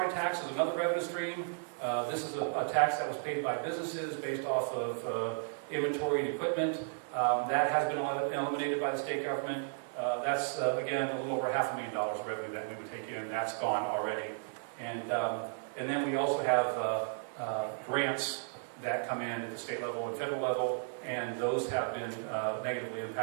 tax is another revenue stream. This is a tax that was paid by businesses based off of inventory and equipment. That has been eliminated by the state government. That's, again, a little over $500,000 of revenue that we would take in. That's gone already. And then we also have grants that come in at the state level and federal level, and those have been negatively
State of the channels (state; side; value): silent; left; digital silence